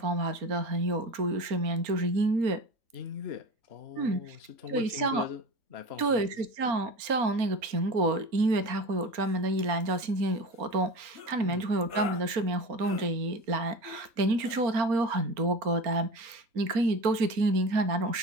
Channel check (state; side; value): late; left; 4.3 ms